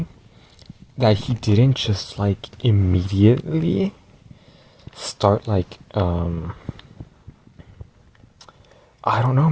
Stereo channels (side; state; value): both; identical; correlation 1.00